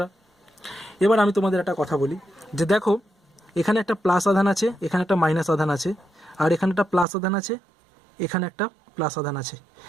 এবার আমি তোমাদের একটা কথা বলি যে দেখো, এখানে একটা প্লাস আধান আছে, এখানে একটা মাইনাস আধান আছে, আর এখানে একটা প্লাস আধান আছে, এখানে একটা প্লাস আধান আছে।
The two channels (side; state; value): left; drops out; at 7.1 s